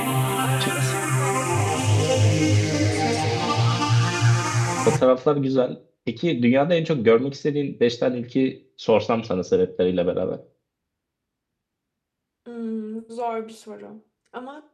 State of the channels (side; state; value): both; identical; correlation 1.00